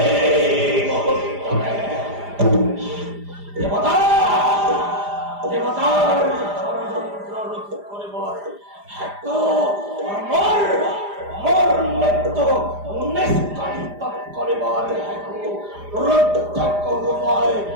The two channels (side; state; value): left; late; 4.9 ms